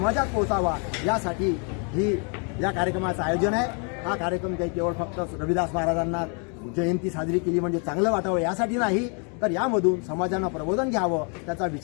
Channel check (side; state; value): right; quieter; 38.0 dB